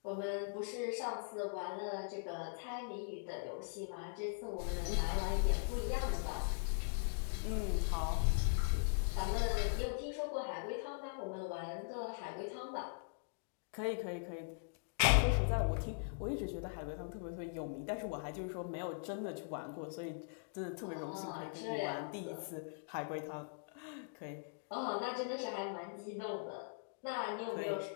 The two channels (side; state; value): right; silent; digital silence